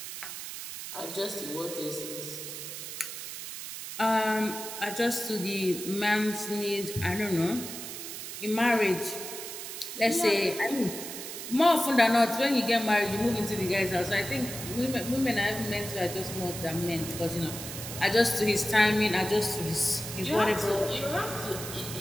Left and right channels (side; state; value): right; noise; hiss, 8 dB below the sound